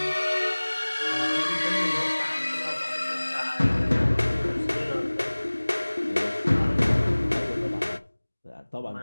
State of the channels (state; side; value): inverted; both; correlation -1.00